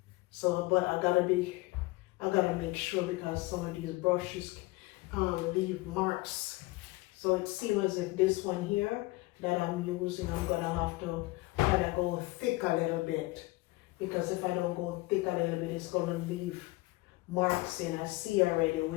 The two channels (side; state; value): right; quieter; 21.3 dB